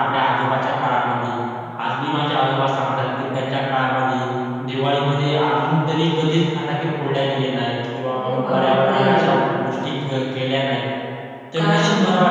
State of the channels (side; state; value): both; identical; correlation 1.00